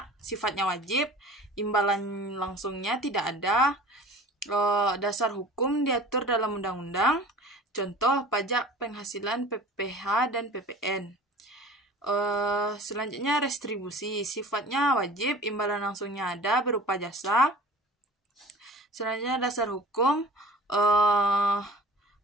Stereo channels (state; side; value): normal; both; correlation 0.42